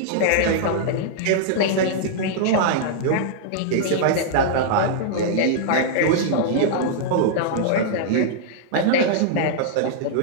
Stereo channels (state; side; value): different; both; correlation -0.01